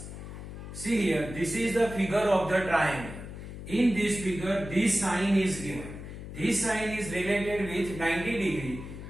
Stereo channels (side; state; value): left; noise; hum, 11 dB below the sound